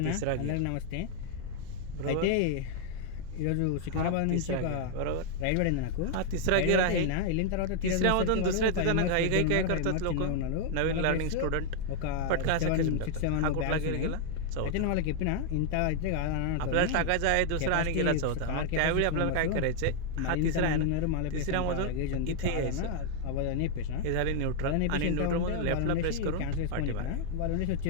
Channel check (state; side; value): different; both; correlation 0.00